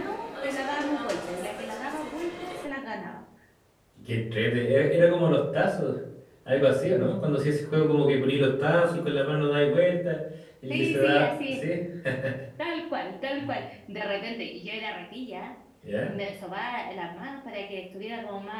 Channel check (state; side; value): identical; both; correlation 1.00